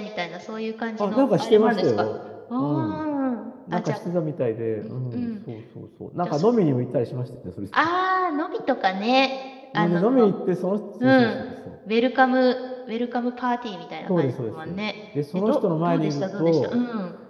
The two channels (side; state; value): both; identical; correlation 1.00